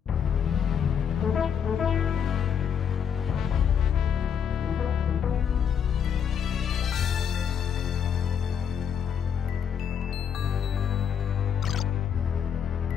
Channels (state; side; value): quieter; right; 7.8 dB